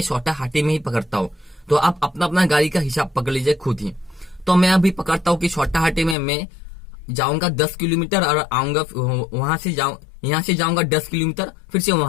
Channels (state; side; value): drops out; right; at 6.2 s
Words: छोटा हाथी में ही पकड़ता हूँ। तो आप अपना अपना गाड़ी का हिसाब पकड़ लीजिए खुद ही। तो मैं अभी पकड़ता हूँ कि छोटा हाथी में मैं जाऊंगा 10 किलोमीटर और आऊंगा वहां से यहाँ से जाऊंगा 10 किलोमीटर, फिर से